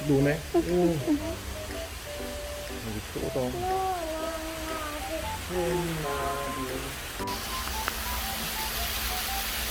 노네. 오. 여기 크다.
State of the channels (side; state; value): both; identical; correlation 1.00